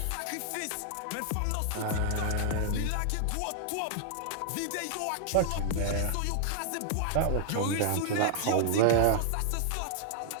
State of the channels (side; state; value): both; different; correlation -0.01